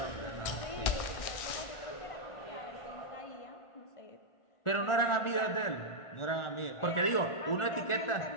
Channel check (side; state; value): right; late; 1.4 ms